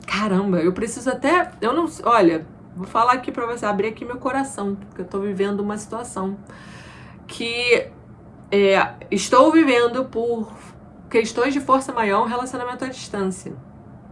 Caramba, eu preciso até, olha, vou falar aqui pra você, abrir aqui meu coração, porque eu tô vivendo uma situação que estou vivendo por questões de força maior, um relacionamento à distância.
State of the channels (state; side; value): identical; both; correlation 1.00